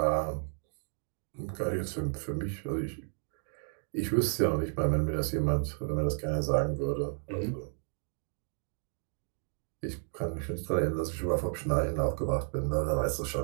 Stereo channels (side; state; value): left; silent; 56 dB below the other